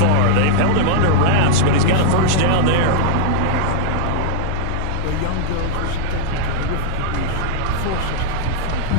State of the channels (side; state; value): both; different; correlation -0.01